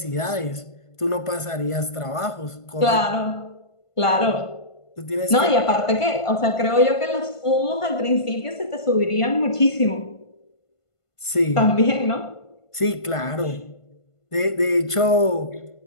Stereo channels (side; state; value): right; late; 1.5 ms